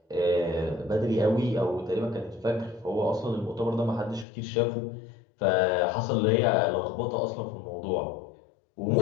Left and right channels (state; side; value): drops out; right; at 4.2 s